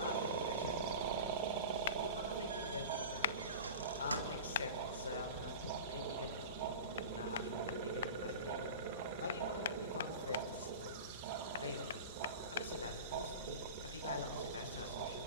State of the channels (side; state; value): both; inverted; correlation -0.32